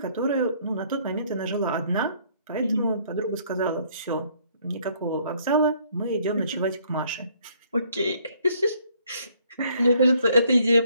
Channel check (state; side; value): inverted; both; correlation -0.64